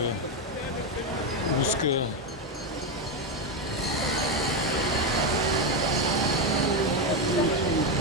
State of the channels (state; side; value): normal; both; correlation 0.09